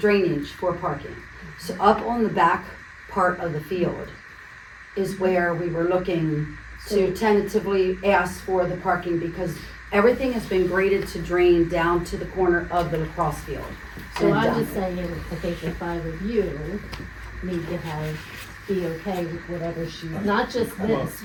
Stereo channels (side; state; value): both; identical; correlation 1.00